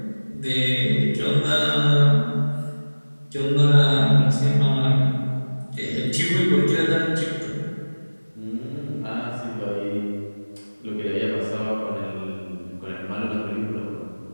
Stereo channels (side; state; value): both; inverted; correlation -1.00